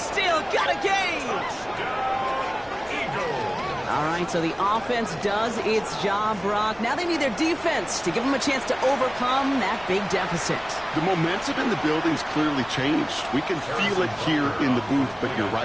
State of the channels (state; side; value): noise; left; rumble, 24 dB below the sound